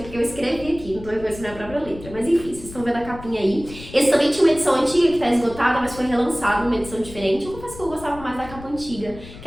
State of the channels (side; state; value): left; noise; rumble, 15 dB below the sound